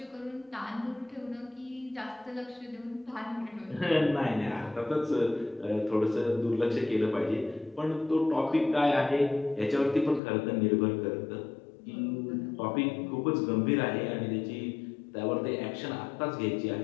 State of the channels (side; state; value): right; drops out; at 10.2 s